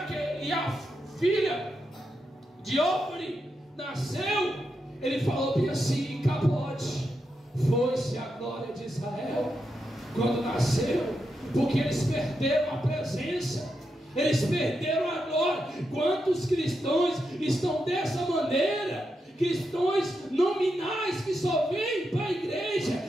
a filha de Ofni nasceu, ele falou bem assim: Capote, foi-se a glória de Israel quando nasceu, porque eles perderam a presença, eles perderam a glória. Quantos cristãos estão dessa maneira? Cristãos nominais que só vêm para a igreja,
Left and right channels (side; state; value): both; normal; correlation 0.85